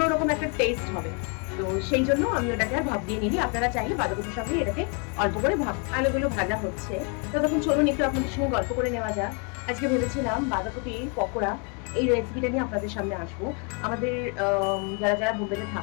একটা টেস্ট হবে। তো সেই জন্য আমি ওটাকে আর ভাপ দিয়ে নিই। আপনারা চাইলে বাঁধাকপির সঙ্গে এটাকে অল্প করে আলুগুলো ভাজা হচ্ছে, ততক্ষণ চলুন একটু আপনাদের সঙ্গে গল্প করে নেওয়া যাক। আজকে ভেবেছিলাম বাঁধাকপির পকোড়া এই রেসিপিটা নিয়ে আপনাদের সামনে আসবো। আমাদের যারা যারা বোম্বেতে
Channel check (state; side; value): quieter; right; 34.5 dB